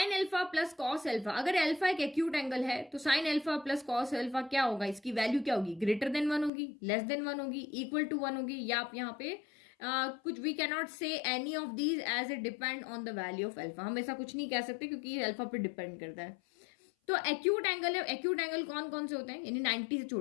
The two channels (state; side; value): drops out; right; at 6.5 s